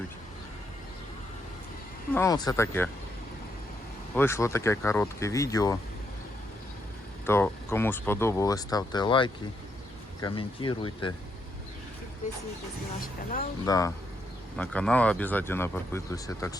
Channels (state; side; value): normal; both; correlation 0.77